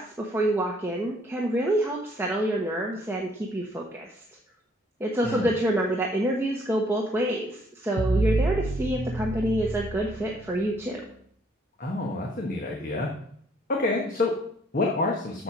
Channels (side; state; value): both; normal; correlation 0.64